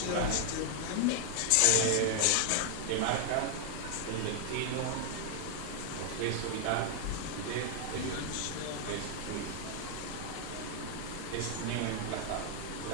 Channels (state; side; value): different; both; correlation 0.00